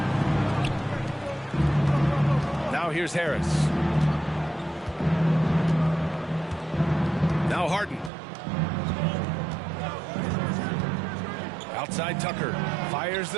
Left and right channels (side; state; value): left; drops out; at 8.1 s